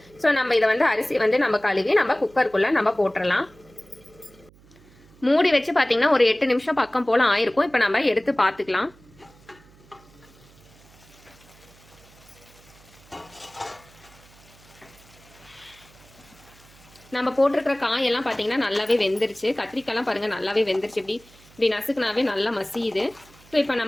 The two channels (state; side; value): noise; right; hum, 26 dB below the sound